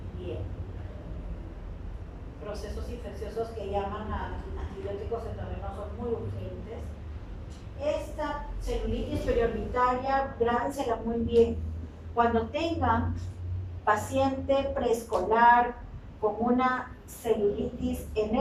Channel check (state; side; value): identical; both; correlation 1.00